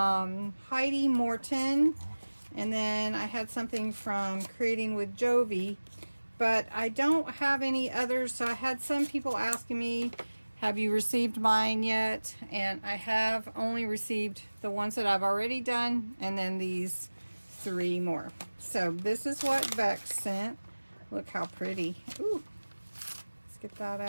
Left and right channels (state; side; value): inverted; both; correlation -1.00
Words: Morton, and then I had something from Creating with Jovi, but I don't have any others. So I had some people asking me, have you received mine yet? And I have only received the ones that I've already done, and then these 3 more. So this is what Bexx sent. Look how pretty. Ooh, let's get that